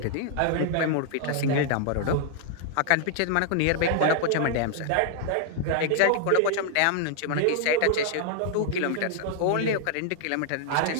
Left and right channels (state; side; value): different; both; correlation 0.00